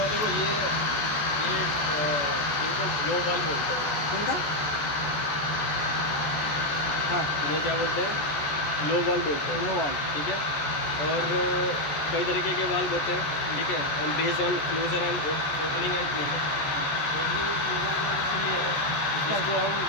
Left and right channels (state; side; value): late; right; 14 ms